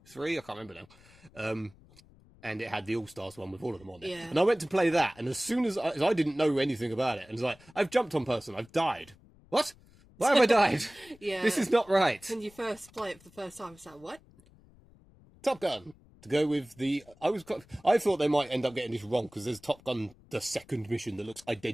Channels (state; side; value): noise; left; rumble, 26 dB below the sound